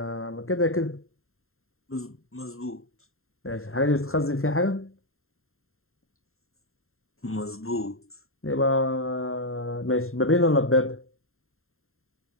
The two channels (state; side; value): late; right; 0.61 ms